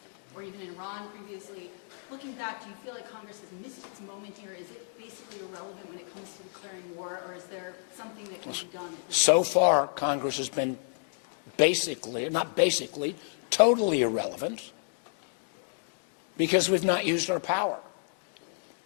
or even in Iran previously, looking back, do you feel like Congress has missed its moment here? Is it basically irrelevant when it comes to declaring war, or is there something that can be done? So far, Congress has been totally irrelevant, because we've not used our power.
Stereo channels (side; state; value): right; silent; digital silence